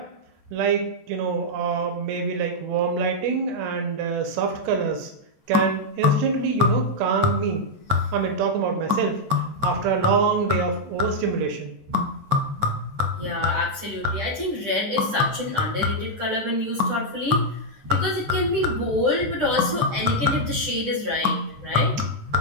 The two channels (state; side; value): late; left; 14 ms